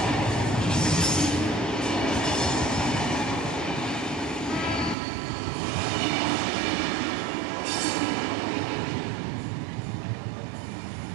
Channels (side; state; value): left; drops out; at 5.0 s